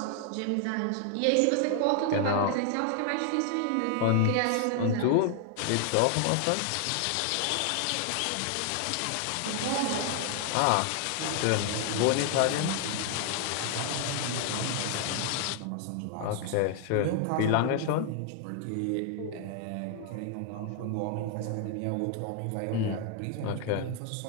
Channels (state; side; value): different; both; correlation 0.00